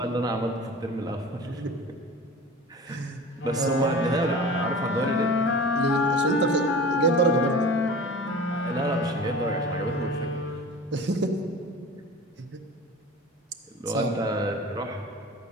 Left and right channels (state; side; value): normal; both; correlation 0.37